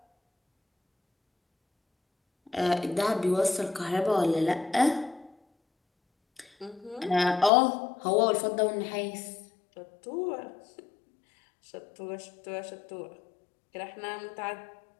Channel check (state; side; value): drops out; right; at 7.5 s